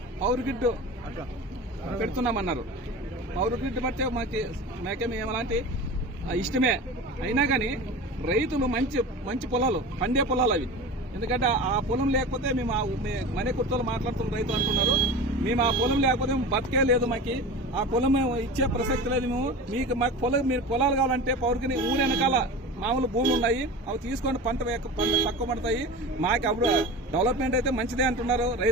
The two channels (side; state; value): both; normal; correlation 0.32